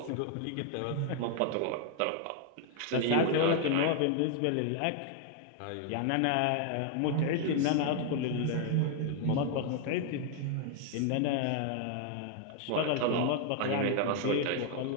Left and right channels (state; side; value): different; both; correlation 0.00